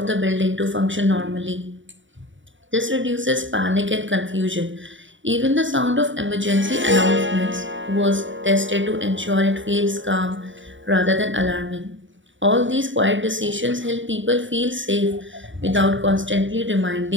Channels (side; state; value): left; late; 0.55 ms